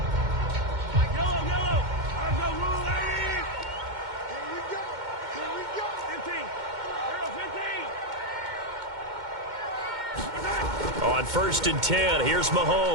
On 1st and 10, here's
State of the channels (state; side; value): late; left; 2.1 ms